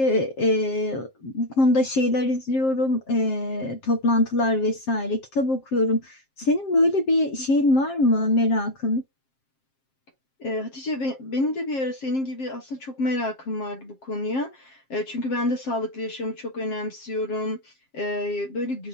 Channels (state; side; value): late; right; 7.5 ms